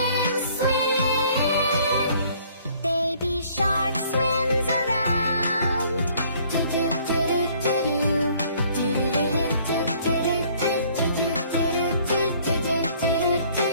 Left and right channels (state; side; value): inverted; both; correlation -0.59